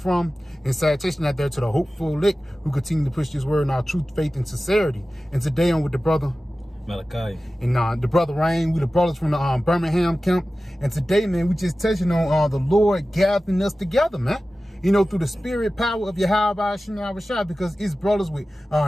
from. And salutation out there to the hopeful elect who continue to push this word in our truth, faith, and sincerity. And today I'm with the brother Malachi. And the brother Rain, we the brothers from the Birmingham camp. And today, man, we just touching on the Lord gathering us together, man. You know, through the spirit power of Yahweh Shai, because it's brothers with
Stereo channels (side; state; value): both; normal; correlation 0.95